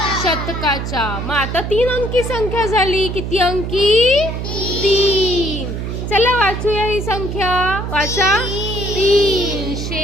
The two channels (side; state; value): right; noise; hum, 4 dB below the sound